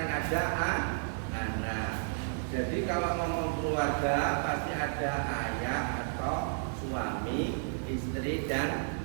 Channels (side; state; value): left; silent; 56 dB below the other